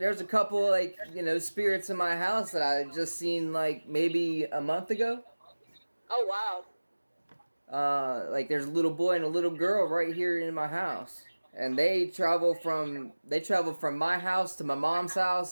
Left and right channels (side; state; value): both; inverted; correlation -1.00